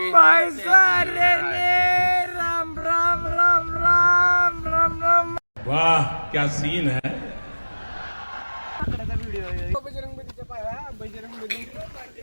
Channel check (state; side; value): inverted; both; correlation -1.00